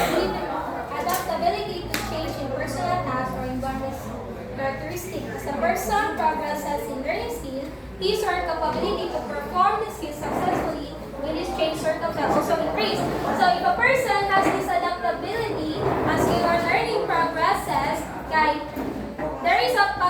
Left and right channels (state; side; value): identical; both; correlation 1.00